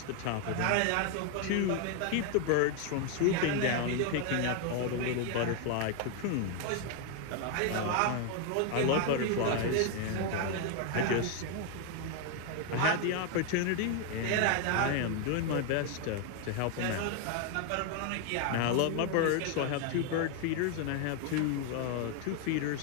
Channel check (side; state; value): both; different; correlation 0.01